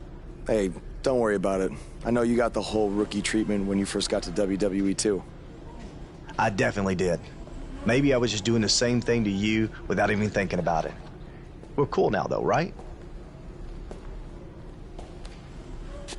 Hey, don't worry about it. I know you got the whole rookie treatment when you first got to WWE, too. I definitely did. Maybe I was just doing the same thing to you without even thinking about it. We're cool now, though, right?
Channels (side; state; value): both; identical; correlation 1.00